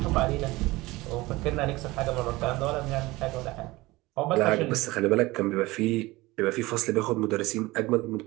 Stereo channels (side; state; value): left; quieter; 20.5 dB